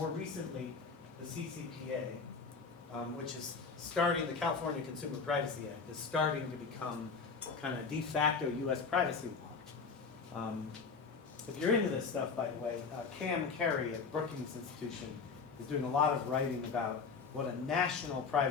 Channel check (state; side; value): quieter; right; 5.1 dB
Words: recently, the CCPA, which is starting, the California Consumer Privacy Act, is starting to become kind of de facto US privacy law. If you're into this stuff, by the way, Cam Carey at Brookings Institution is doing a lot of writing about what a national